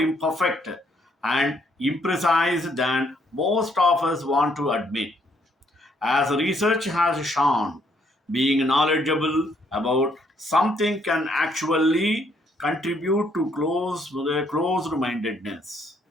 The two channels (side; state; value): both; normal; correlation 0.69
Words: and imprecise than most of us want to admit. As research has shown, being knowledgeable about something can actually contribute to closed mindedness.